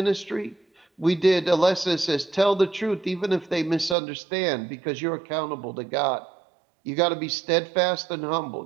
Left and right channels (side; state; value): left; drops out; at 4.0 s